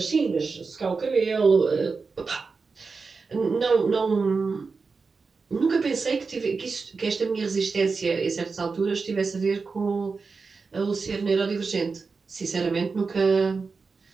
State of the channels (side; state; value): left; quieter; 4.6 dB